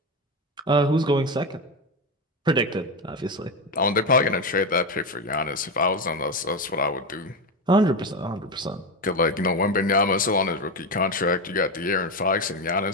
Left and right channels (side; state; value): both; normal; correlation 0.15